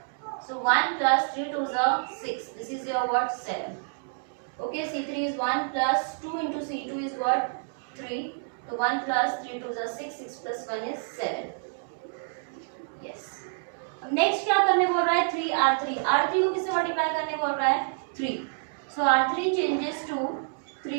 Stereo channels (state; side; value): silent; left; digital silence